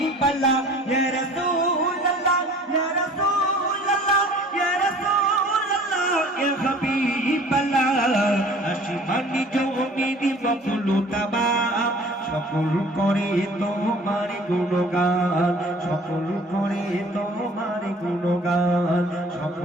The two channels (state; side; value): normal; both; correlation 0.49